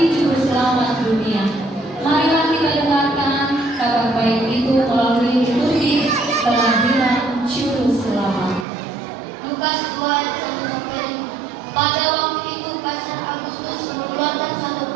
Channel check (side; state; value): left; drops out; at 8.7 s